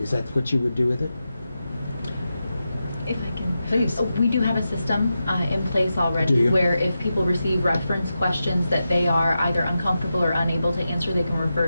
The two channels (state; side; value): inverted; both; correlation -0.90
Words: that what you would do with it? If I can. Please. We do have a system in place Do already you? where if people receive reference questions that they are either uncomfortable or unable to answer, they can